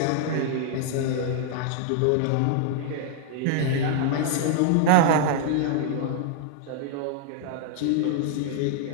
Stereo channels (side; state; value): both; different; correlation -0.01